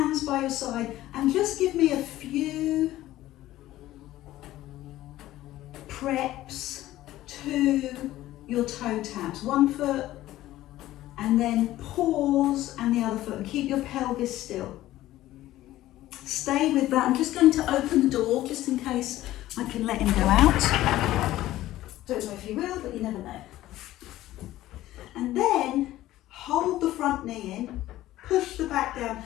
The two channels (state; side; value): quieter; right; 15.1 dB